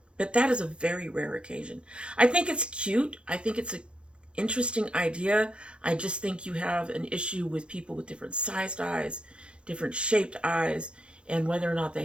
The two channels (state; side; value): late; left; 0.058 ms